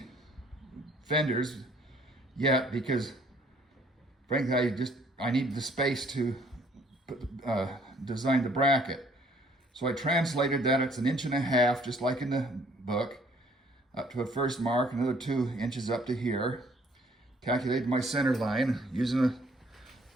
fenders yet because, frankly, I need the space to design the bracket. So I translated that. It's 1.5 inches, just like in the book, up to a first mark, another 2 inches up to here. Calculated my center line using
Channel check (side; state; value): both; normal; correlation 0.61